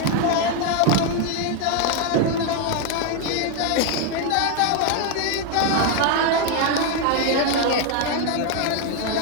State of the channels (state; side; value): different; both; correlation 0.01